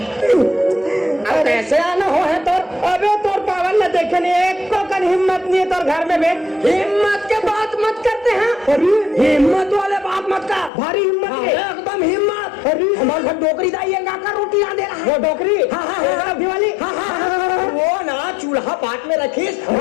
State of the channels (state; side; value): drops out; right; at 10.7 s